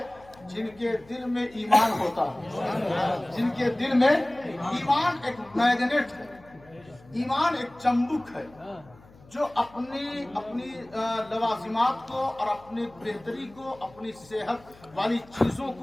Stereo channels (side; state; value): left; noise; hum, 25 dB below the sound